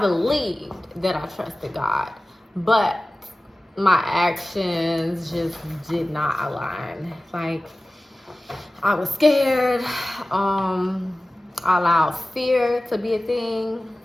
that I trusted God, but my actions just did not align. Like, I was scared. I allowed fear to be a thing.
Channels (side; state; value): both; normal; correlation 0.97